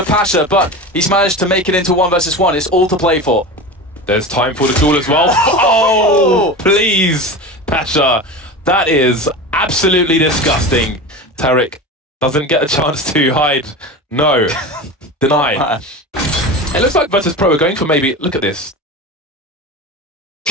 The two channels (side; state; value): both; normal; correlation 0.28